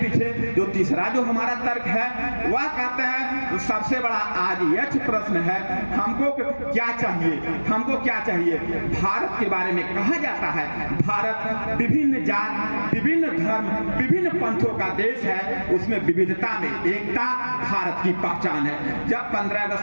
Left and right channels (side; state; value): both; inverted; correlation -1.00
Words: जो तीसरा जो हमारा तर्क है वह कहते हैं सबसे बड़ा आज यह प्रश्न है हमको क्या चाहिए, हमको क्या चाहिए। भारत के बारे में कहा जाता है भारत विभिन्न जात, विभिन्न धर्म, विभिन्न पंथों का देश है, उसमें विविधता में एकता भारत की पहचान है। जब 15